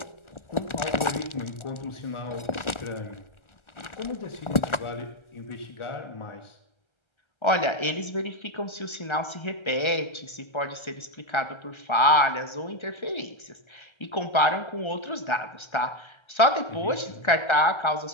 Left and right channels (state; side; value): late; right; 1.4 ms